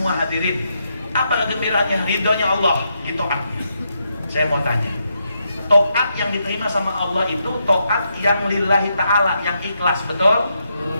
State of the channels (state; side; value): inverted; both; correlation -0.81